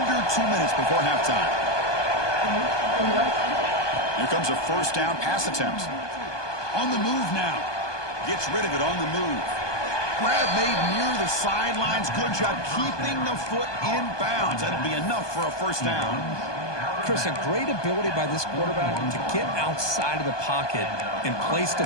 2 minutes before halftime. Here comes a 1st down pass attempt. On the move now. Gets rid of it on the move. Grab made near the sidelines. Good job keeping the foot in bounds. That'll be enough for a 1st down. Chris, a great ability by this quarterback to get outside of the pocket and place the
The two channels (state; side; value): late; right; 1.2 ms